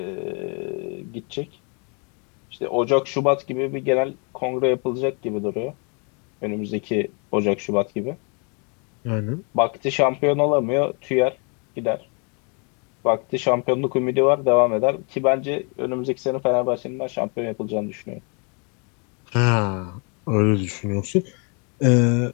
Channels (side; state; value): right; quieter; 35.8 dB